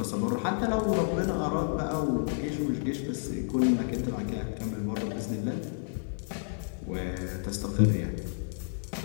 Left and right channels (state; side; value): silent; right; digital silence